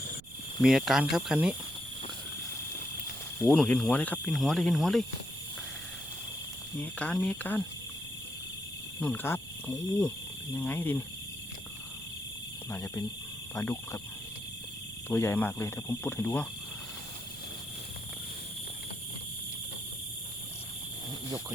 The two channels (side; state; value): right; noise; rumble, 20 dB below the sound